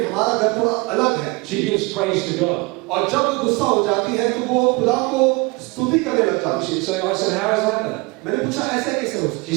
हमारा घर थोड़ा अलग है. she gives praise to God. और जब वो गुस्सा हो जाती है तो वो खुदा को स्तुति करने लग जाती है. So I said, how is that then? मैंने पूछा ऐसे कैसे हो सकता है? She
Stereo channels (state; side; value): quieter; left; 25.6 dB